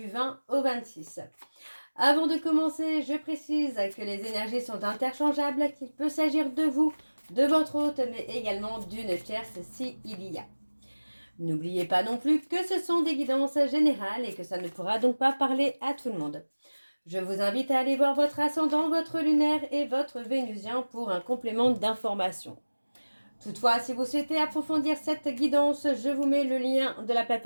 20 au 26. Avant de commencer, je précise que les énergies sont interchangeables, qu'il peut s'agir de vous, de votre hôte, mais également d'une tierce s'il y a. N'oubliez pas non plus que ce sont des guidances générales et que ça ne pourra donc pas parler à tout le monde. Je vous invite à aller voir votre ascendant, votre lunaire et votre vénusien pour un complément d'information. Toutefois, si vous souhaitez approfondir cette guidance, je vous mets le lien de la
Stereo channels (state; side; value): inverted; both; correlation -1.00